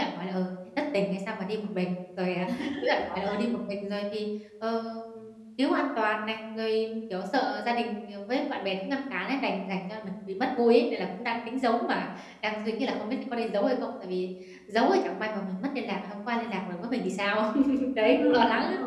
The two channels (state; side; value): identical; both; correlation 1.00